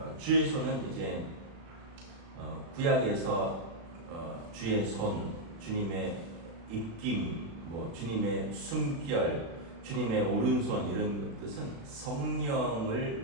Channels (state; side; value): late; left; 36 ms